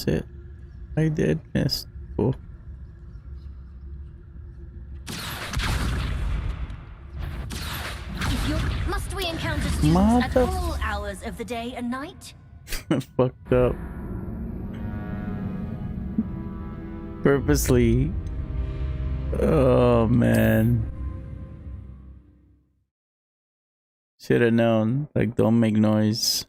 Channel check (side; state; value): both; identical; correlation 1.00